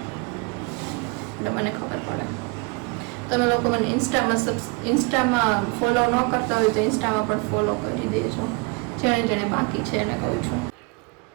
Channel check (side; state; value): left; quieter; 29.3 dB